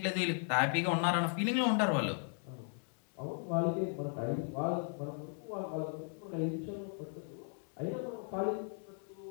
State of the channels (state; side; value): silent; right; 53 dB below the other